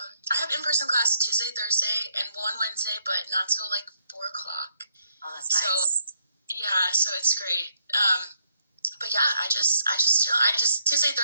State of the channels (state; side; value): inverted; both; correlation -0.74